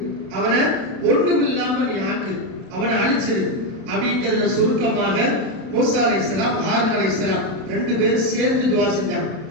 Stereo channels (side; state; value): left; late; 32 ms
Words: அவனை ஒண்ணுமில்லாம நீ ஆக்கு, அவனை அழிச்சிரு அப்படிங்கறத சுருக்கமாக மூசா அலைஹிஸ்ஸலாம் ஹாரூன் அலைஹிஸ்ஸலாம் 2 பேரும் சேர்ந்து துஆ செஞ்சாங்க.